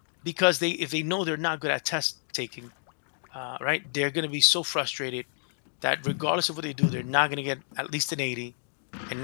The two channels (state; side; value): silent; right; digital silence